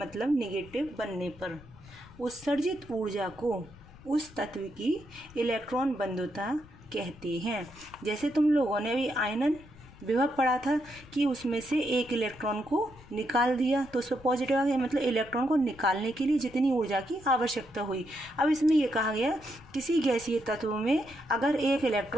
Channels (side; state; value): left; noise; rumble, 21 dB below the sound